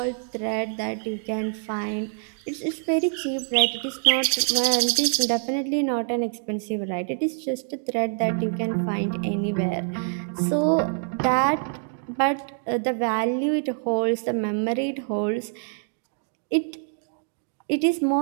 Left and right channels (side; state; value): left; silent; digital silence